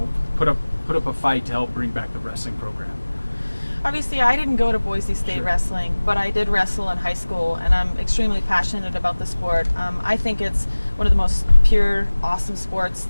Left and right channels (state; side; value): inverted; both; correlation -1.00